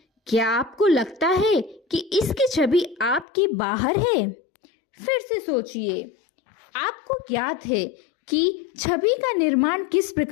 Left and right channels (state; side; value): drops out; right; at 3.2 s